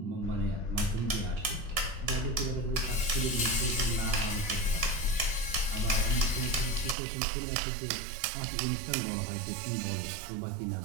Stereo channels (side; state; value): left; drops out; at 7.0 s